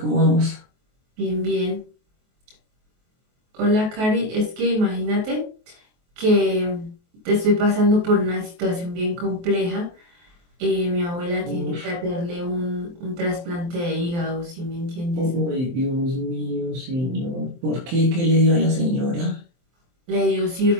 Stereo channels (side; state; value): left; late; 23 ms